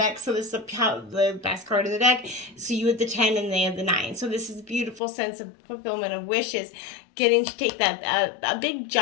deck. So this is the best card in the deck. So you have the 10 and they have the 9. So this is a beautiful sense of fulfillment of wishes. Getting to take that a big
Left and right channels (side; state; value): right; drops out; at 5.0 s